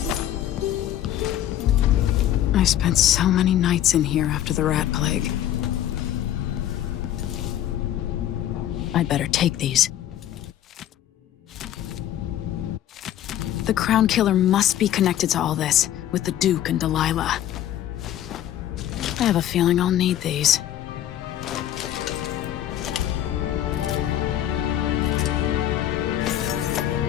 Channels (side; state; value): right; quieter; 11.7 dB